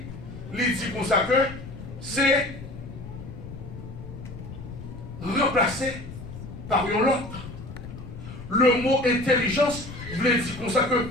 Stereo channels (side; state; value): left; noise; rumble, 12 dB below the sound